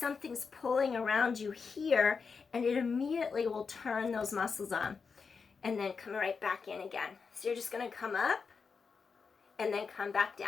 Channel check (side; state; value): right; quieter; 5.3 dB